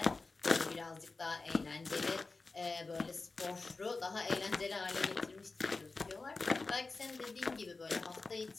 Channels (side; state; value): right; quieter; 3.8 dB